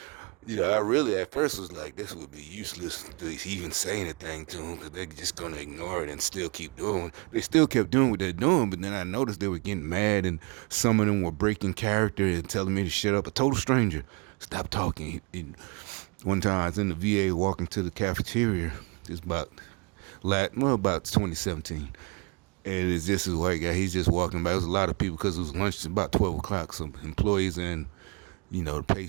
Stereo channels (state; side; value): quieter; left; 30.5 dB